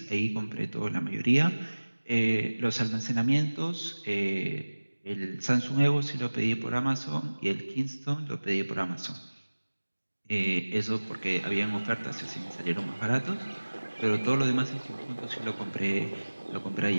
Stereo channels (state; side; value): inverted; both; correlation -1.00